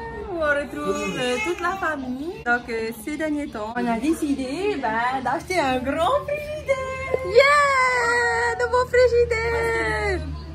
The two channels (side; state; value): both; identical; correlation 1.00